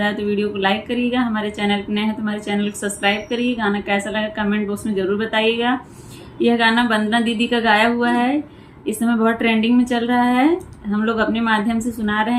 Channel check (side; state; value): both; identical; correlation 1.00